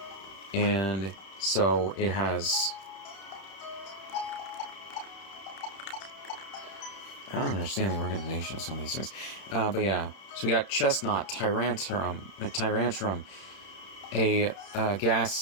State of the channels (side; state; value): right; late; 31 ms